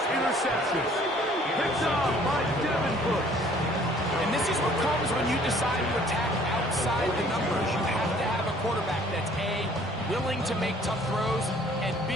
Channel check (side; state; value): both; normal; correlation 0.57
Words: interception. Picked off by Devin Bush. And this is what comes when you decide to attack outside the numbers. You have to have a quarterback that's A, willing to make tough throws, and B,